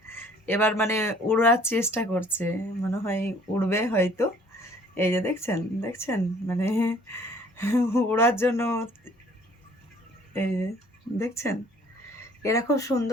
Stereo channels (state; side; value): normal; both; correlation 0.56